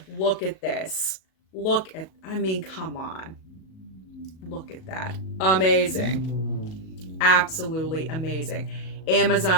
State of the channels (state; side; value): late; right; 37 ms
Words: Look at this. I mean, come on. Look at that. Amazing. Absolutely amazing.